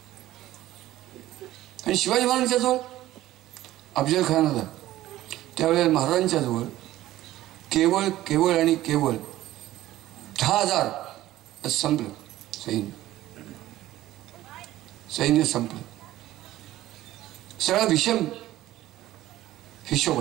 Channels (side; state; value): left; quieter; 15.1 dB